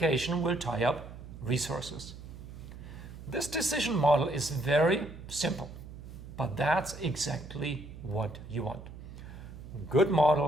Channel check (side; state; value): right; noise; hum, 13 dB below the sound